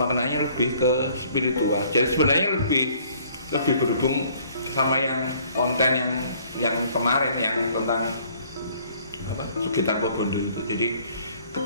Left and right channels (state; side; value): inverted; both; correlation -0.59